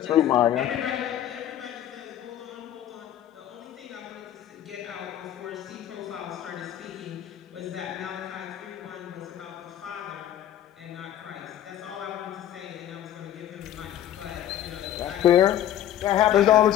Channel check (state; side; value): quieter; right; 11.6 dB